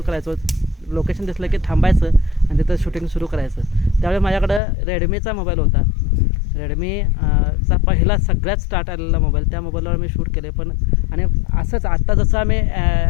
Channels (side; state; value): right; drops out; at 4.6 s